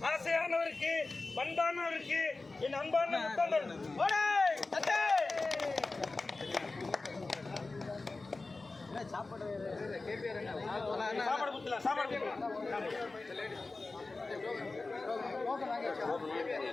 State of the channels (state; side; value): quieter; right; 3.5 dB